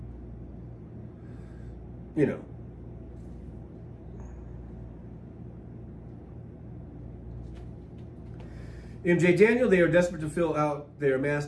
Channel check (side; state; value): both; identical; correlation 1.00